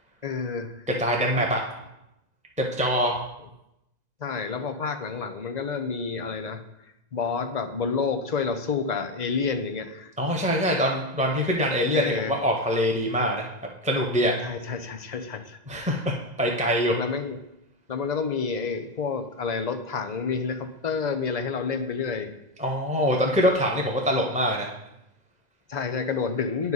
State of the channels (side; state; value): left; late; 2.0 ms